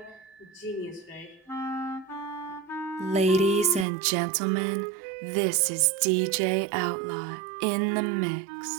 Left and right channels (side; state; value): left; drops out; at 3.9 s